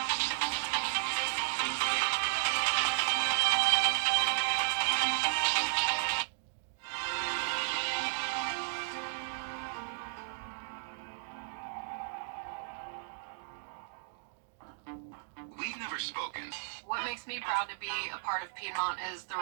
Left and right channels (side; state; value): left; silent; digital silence